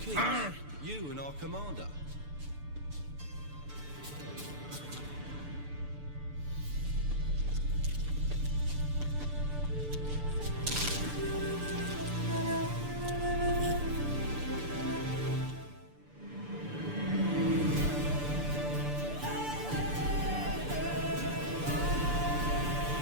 Keith. You and our commander.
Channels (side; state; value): left; late; 6.8 ms